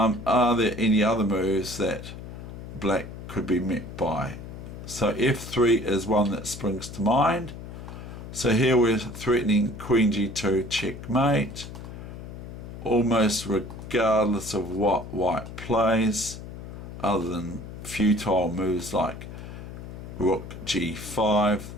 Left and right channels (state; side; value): noise; left; hum, 11 dB below the sound